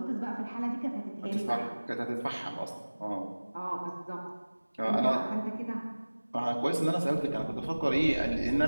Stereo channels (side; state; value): both; inverted; correlation -1.00